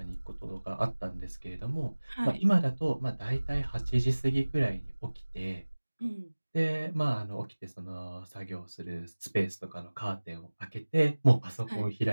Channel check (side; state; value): both; inverted; correlation -1.00